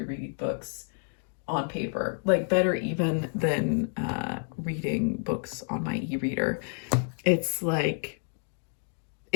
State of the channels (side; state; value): right; silent; 58 dB below the other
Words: read books on paper, like better even than reading books on my e-reader. It's like,